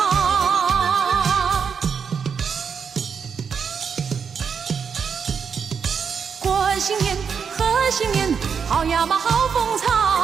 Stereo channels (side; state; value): left; quieter; 6.5 dB